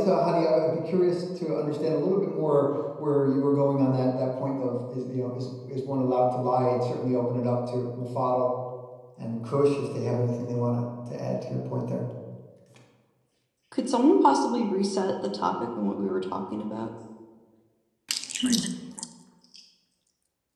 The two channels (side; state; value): both; identical; correlation 1.00